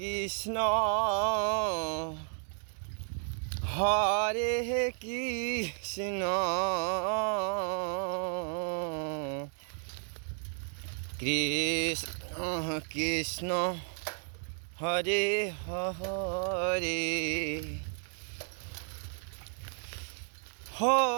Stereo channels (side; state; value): left; silent; 56 dB below the other